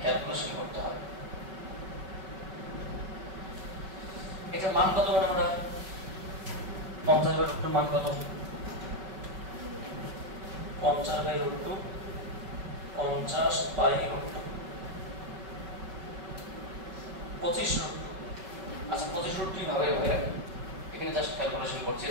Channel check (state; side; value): late; left; 5.3 ms